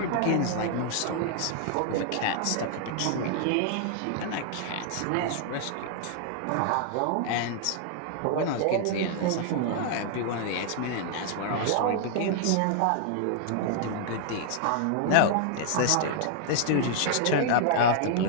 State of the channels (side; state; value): both; different; correlation 0.00